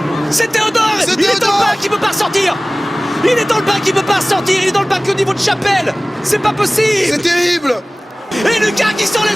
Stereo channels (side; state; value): both; normal; correlation 0.98